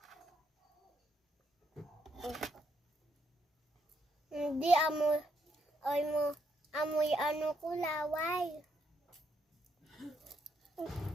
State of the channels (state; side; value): normal; both; correlation 0.76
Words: Hindi amoy ano ko laway.